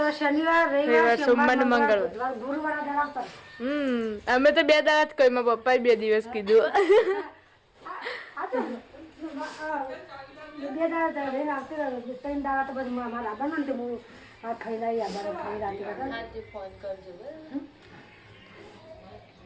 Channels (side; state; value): both; identical; correlation 1.00